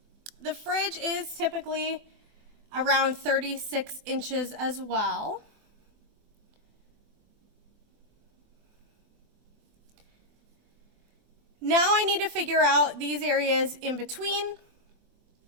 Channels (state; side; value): late; left; 24 ms